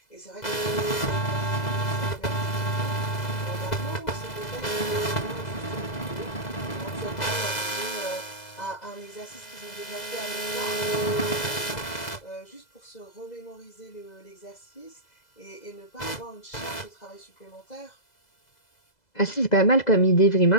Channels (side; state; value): right; late; 2.0 ms